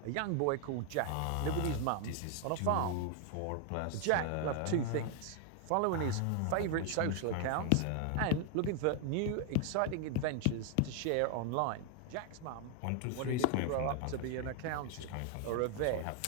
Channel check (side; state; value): both; different; correlation 0.00